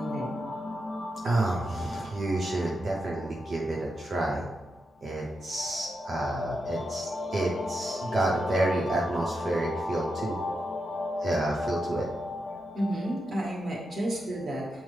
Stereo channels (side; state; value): both; normal; correlation 0.86